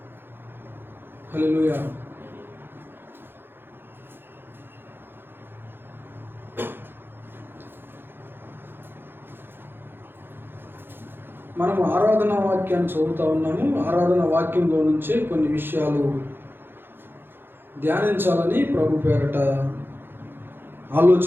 హల్లెలూయా. మనం ఆరాధనా వాక్యాన్ని చదువుతూ ఉన్నాము. ఆరాధనా వాక్యంలో నుంచే కొన్ని విషయాలు ధ్యానించాలని ప్రభు పేరట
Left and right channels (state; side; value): late; left; 0.10 ms